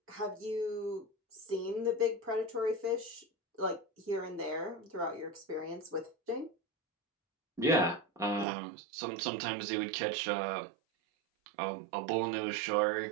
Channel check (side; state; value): left; drops out; at 8.5 s